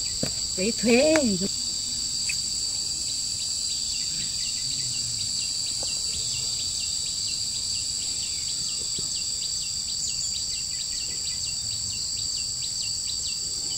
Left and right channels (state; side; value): identical; both; correlation 1.00